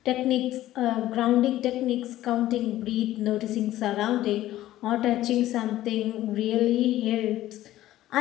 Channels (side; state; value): right; quieter; 14.4 dB